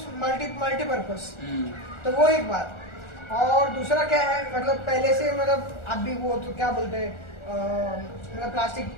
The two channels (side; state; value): right; late; 1.4 ms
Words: मल्टीपर्पज। तो वो एक बात। और दूसरा क्या है, मतलब पहले से मतलब अभी वो तो क्या बोलते हैं, मतलब प्लास्टिक